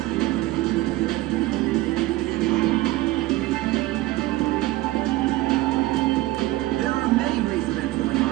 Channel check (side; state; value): left; quieter; 17.8 dB